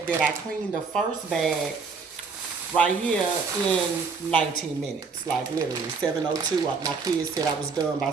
that I cleaned the first bag right here in 19 minutes, like literally 7:02. My kids said I was done by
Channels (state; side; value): quieter; left; 5.0 dB